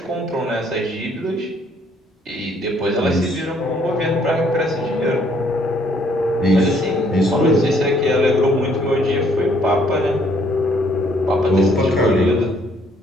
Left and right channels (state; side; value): normal; both; correlation 0.65